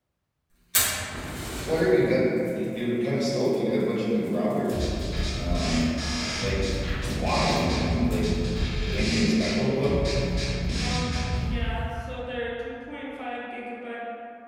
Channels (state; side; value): identical; both; correlation 1.00